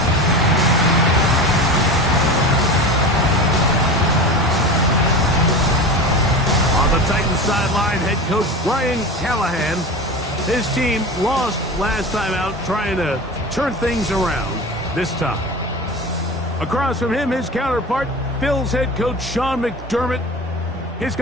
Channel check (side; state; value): both; normal; correlation 0.30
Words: Sideline head coach Brian Callahan. His team lost last time out, trying to turn things around this time. Across from him, his counterpart, Bills head coach Sean McDermott. His